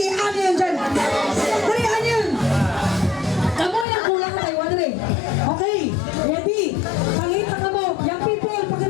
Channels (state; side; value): drops out; right; at 3.9 s